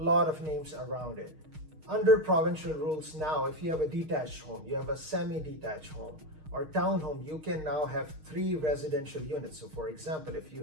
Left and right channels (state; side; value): late; left; 6.4 ms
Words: of names around it. Under provincial rules now, if you have a detached home, you have a semi-detached home, or townhome, you can now have 3 residential units. So for example, if you